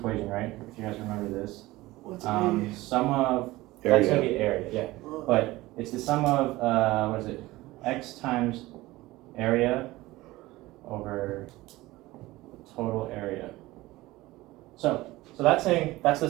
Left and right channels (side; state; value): left; quieter; 18.8 dB